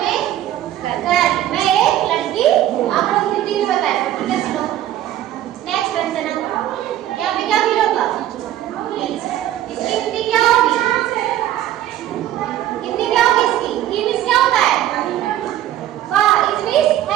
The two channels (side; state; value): left; quieter; 12.7 dB